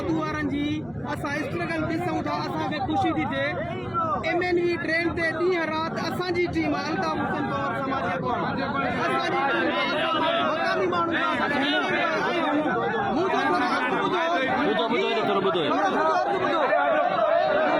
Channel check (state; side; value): noise; right; rumble, 28 dB below the sound